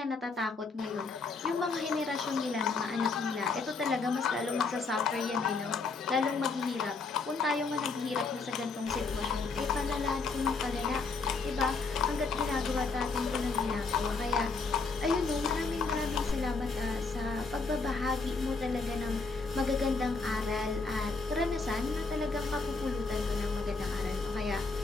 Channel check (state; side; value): quieter; right; 4.2 dB